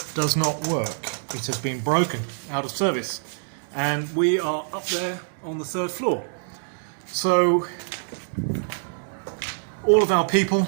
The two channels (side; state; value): left; silent; 62 dB below the other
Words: does not work. It has been broken, out of service, and we are up there on the third floor. So all of our people,